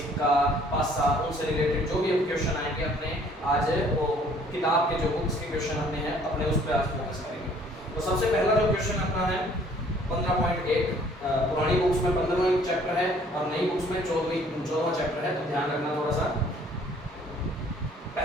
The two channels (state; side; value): normal; both; correlation 0.58